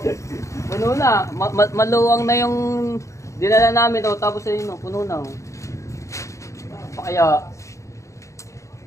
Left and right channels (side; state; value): right; late; 0.15 ms